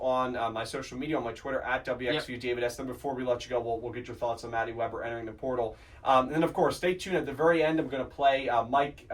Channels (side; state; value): both; identical; correlation 1.00